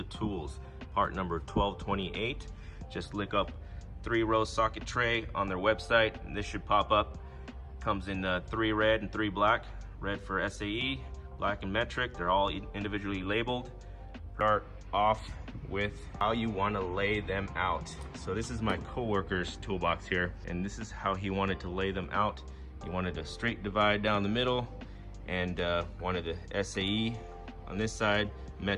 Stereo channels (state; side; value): identical; both; correlation 1.00